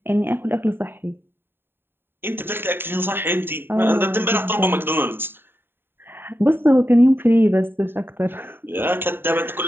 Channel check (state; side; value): late; left; 0.10 ms